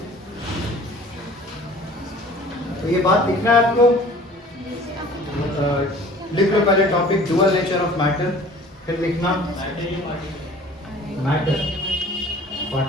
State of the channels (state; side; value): normal; both; correlation 0.48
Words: तो ये बात लिखना है आपको। लिख लो पहले topic dual nature of matter, फिर लिखना मैटर।